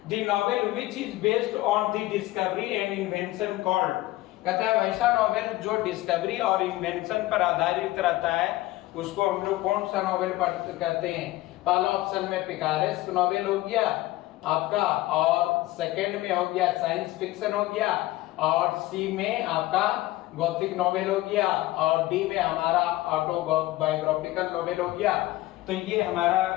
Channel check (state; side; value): quieter; right; 17.5 dB